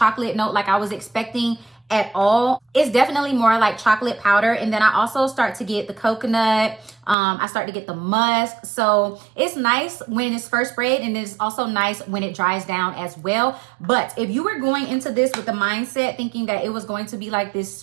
note like I was expecting at all. It's definitely more like chocolate powder. And then I also start to get the coconut. I start to get the musk. So it's nice when it's first sprayed, and it's also nice when it dries down as well. But if you were going into this with the mindset thinking that it was going to be like this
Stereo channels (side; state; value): left; drops out; at 7.2 s